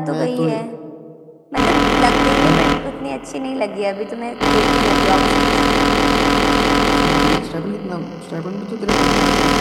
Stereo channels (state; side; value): identical; both; correlation 1.00